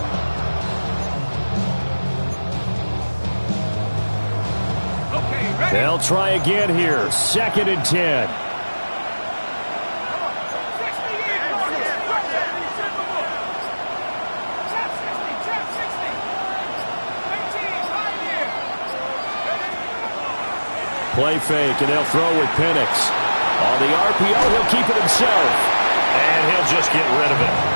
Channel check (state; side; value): inverted; both; correlation -1.00